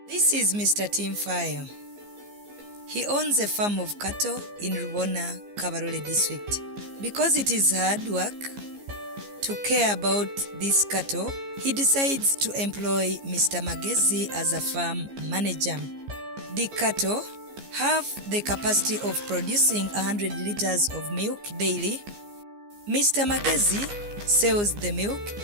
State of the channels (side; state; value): left; late; 15 ms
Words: This is Mr. Tinfayo. He owns a farm of cattle in Rubona, Kabarole district. Because it is hard work to care about these cattle, he decides to employ Mr. Magezi as a farm manager. The cattle have the capacity of producing 100 liters of milk daily. Mr. Magezi sells the milk